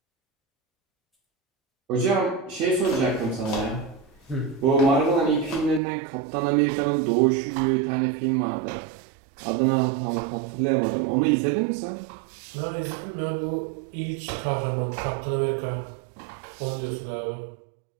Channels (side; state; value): left; drops out; at 5.8 s